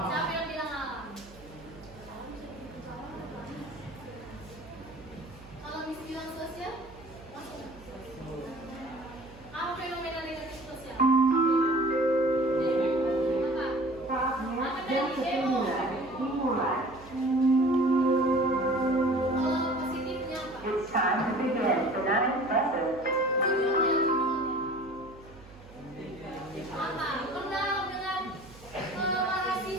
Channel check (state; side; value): noise; right; hum, 21 dB below the sound